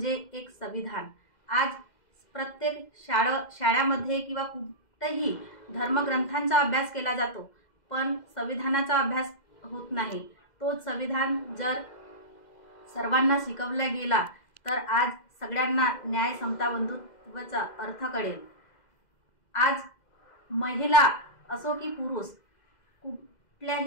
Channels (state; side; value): late; right; 2.0 ms